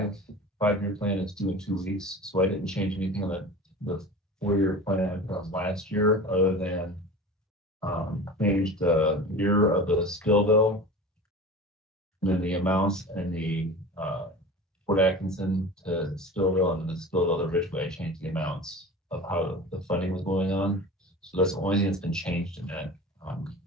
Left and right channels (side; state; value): both; normal; correlation 0.35